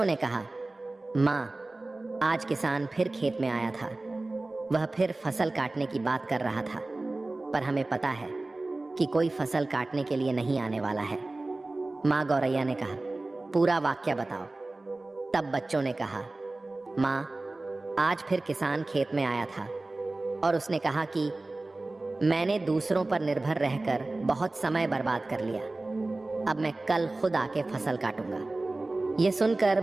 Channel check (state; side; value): quieter; left; 3.0 dB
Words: ने कहा, माँ, आज किसान फिर खेत में आया था। वह फिर फसल काटने की बात कर रहा था, पर हमें पता है कि कोई फसल काटने के लिए नहीं आने वाला है। माँ गौरैया ने कहा, पूरा वाक्य बताओ। तब बच्चों ने कहा, माँ, आज फिर किसान खेत में आया था और उसने कहा कि मैंने दूसरों पर निर्भर रहकर बहुत समय बर्बाद कर लिया। अब मैं कल खुद आके फसल काटूंगा। ये सुनकर